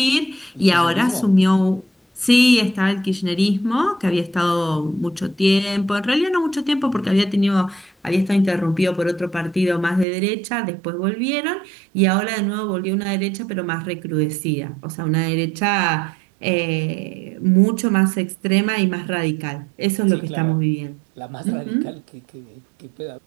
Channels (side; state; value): left; drops out; at 10.1 s